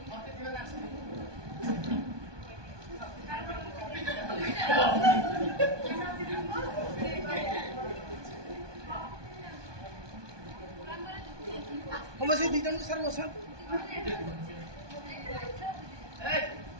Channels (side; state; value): left; late; 1.2 ms